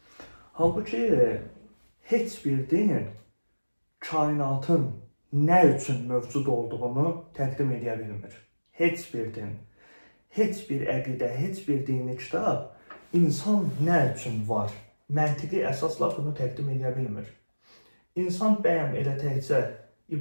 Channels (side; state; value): both; inverted; correlation -1.00